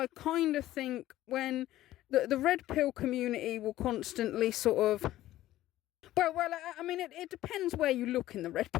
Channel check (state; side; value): quieter; right; 14.7 dB